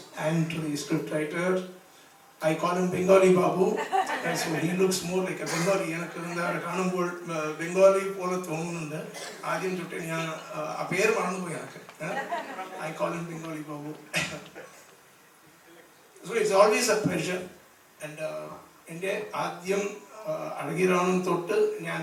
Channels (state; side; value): identical; both; correlation 1.00